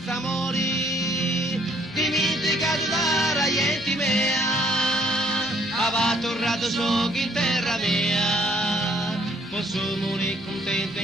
amori, dimenticato da raienti mea, aveva tornato so che in terra mia, posso morire contento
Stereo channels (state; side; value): normal; both; correlation 0.64